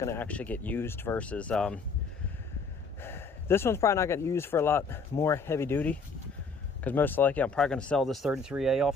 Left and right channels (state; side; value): quieter; right; 4.4 dB